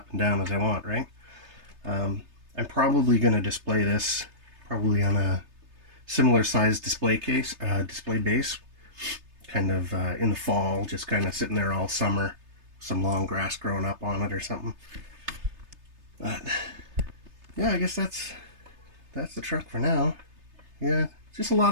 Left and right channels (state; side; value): late; left; 3.3 ms